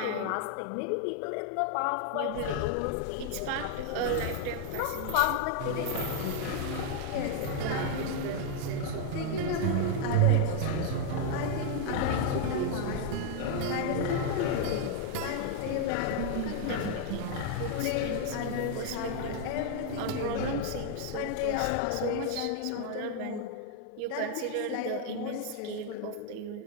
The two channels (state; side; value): different; both; correlation 0.00